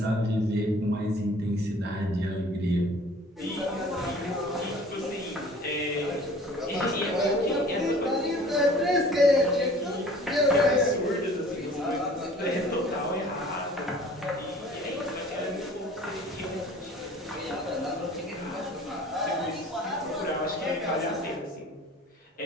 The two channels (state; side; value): normal; both; correlation 0.48